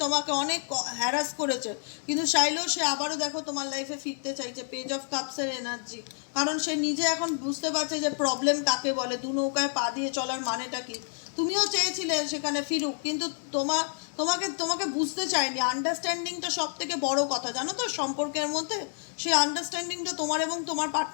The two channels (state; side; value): silent; right; 59 dB below the other